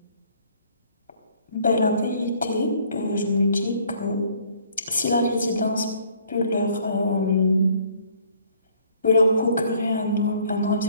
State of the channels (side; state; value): both; inverted; correlation -0.60